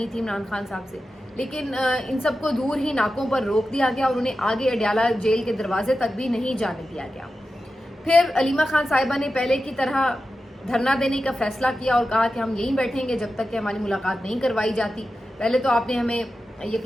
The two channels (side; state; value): both; normal; correlation 0.92